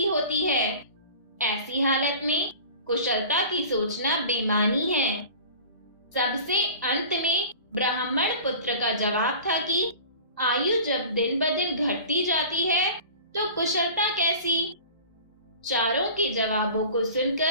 होती है। ऐसी हालत में कुशलता की सोचना बेमानी है। सबसे अंत में ब्राह्मण पुत्र का जवाब था कि आयु जब दिन ब दिन घटती जाती है तो कुशलता कैसी। चारों के जवाबों को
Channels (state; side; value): inverted; both; correlation -0.40